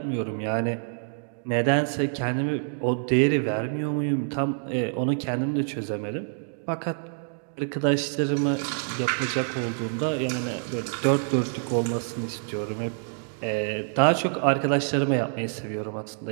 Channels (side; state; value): left; silent; digital silence